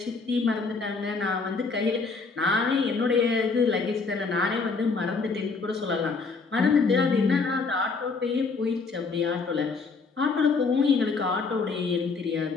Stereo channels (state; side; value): quieter; right; 4.4 dB